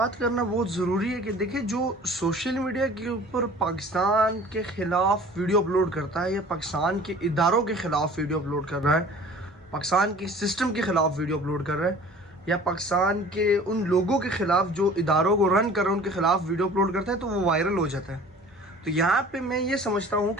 करना बहुत ज़रूरी है कि देखिए, जो सोशल मीडिया के ऊपर पाकिस्तान के ख़िलाफ़ वीडियो अपलोड करता है या पाकिस्तान के इदारों के ख़िलाफ़ वीडियो अपलोड कर रहा है, पाकिस्तान के सिस्टम के ख़िलाफ़ वीडियो अपलोड कर रहा है, या पाकिस्तान के उन लोगों के ख़िलाफ़ जो इदारों को रन कर रहे हैं उनके ख़िलाफ़ वीडियो अपलोड करता है, तो वो वायरल हो जाता है। तो यहाँ पे मैं ये समझता हूँ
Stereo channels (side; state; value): both; normal; correlation 0.46